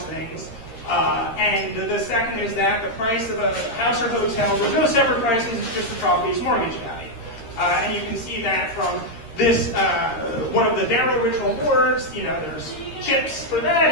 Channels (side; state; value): right; late; 13 ms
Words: things. And the second is that the price of a house or hotel, there's no separate prices, it's just the property's mortgage value. And you can see that from this, one of the Darrow original boards, you know, there's chips for that,